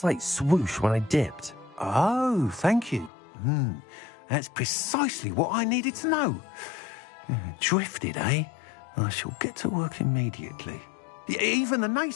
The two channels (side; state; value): right; drops out; at 3.1 s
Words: swoosh when I dipped. Oh, thank you. That's precisely what I needed to know. Drifted, eh? I shall get to work immediately. Even the